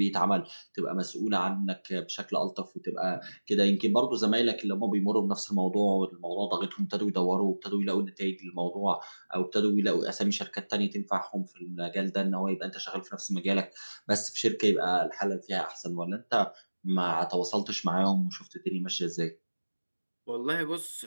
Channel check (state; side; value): inverted; both; correlation -1.00